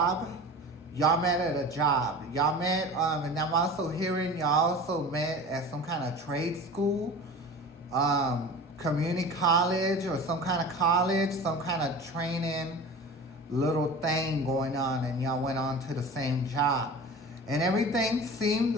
Y'all met at a job. Y'all met, and I'm also hearing y'all also met at some kind of trade school, community college, or some kind of college, some kind of training little thing going on, and y'all went on to the same job. And everything seemed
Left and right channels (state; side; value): normal; both; correlation 0.36